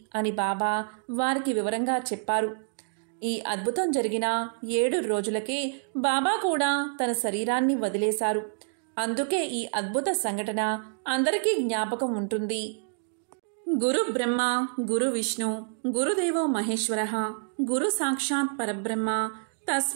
అని బాబా వారికి వివరంగా చెప్పారు. ఈ అద్భుతం జరిగిన 7 రోజులకే బాబా కూడా తన శరీరాన్ని వదిలేశారు. అందుకే ఈ అద్భుత సంఘటన అందరికీ జ్ఞాపకం ఉంటుంది. గురు బ్రహ్మ, గురు విష్ణు, గురుదేవో మహేశ్వరః, గురు సాక్షాత్ పరబ్రహ్మ,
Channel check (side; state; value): left; silent; digital silence